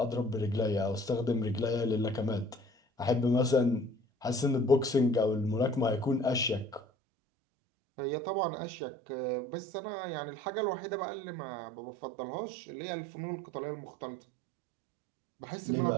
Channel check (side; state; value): left; drops out; at 6.8 s